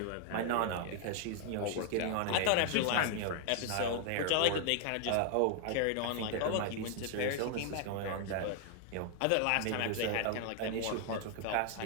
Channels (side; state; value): both; different; correlation 0.00